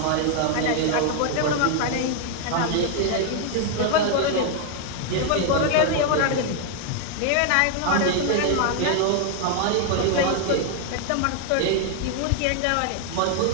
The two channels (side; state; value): both; different; correlation 0.00